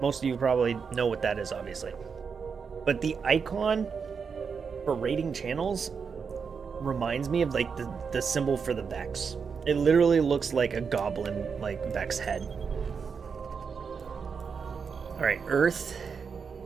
Most of you probably know what that is, obviously. But the icon for raiding channels reminds me of like the symbol for the Vex. It literally looks like a goblin, like Vex head. Alright, Earth.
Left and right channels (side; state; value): left; quieter; 5.9 dB